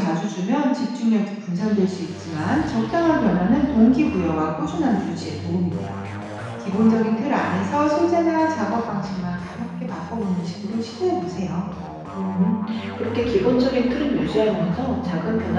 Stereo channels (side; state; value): both; identical; correlation 1.00